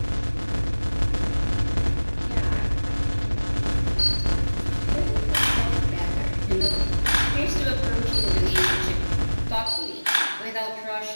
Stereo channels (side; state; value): both; inverted; correlation -1.00